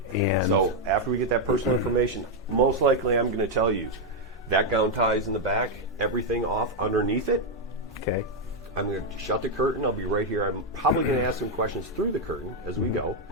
And so after we get that personal information, most likely I'm going to tell you that gown ties in the back, everything off underneath it. Okay. I'm going to shut the curtain. I'll be right here. I'm probably going to ask some questions through the curtain as we go.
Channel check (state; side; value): normal; both; correlation 0.01